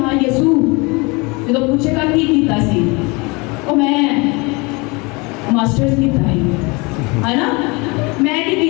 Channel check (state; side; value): quieter; right; 27.1 dB